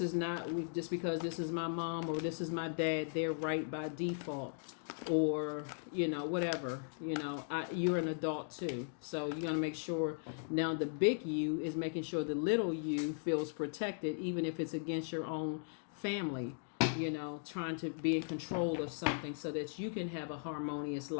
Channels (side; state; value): right; silent; digital silence